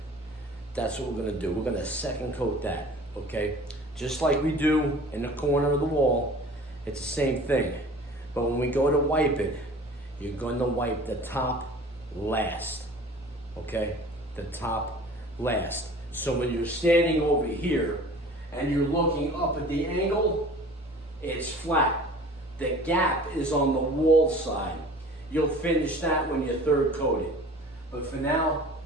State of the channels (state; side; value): normal; both; correlation 0.44